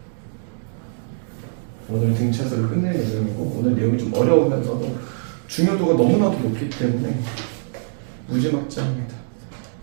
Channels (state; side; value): silent; left; digital silence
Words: 오늘 등차수를 끝낼 예정이고 오늘 내용이 좀 어려우면서도 중요도가 너무나도 높기 때문에 무지막지합니다.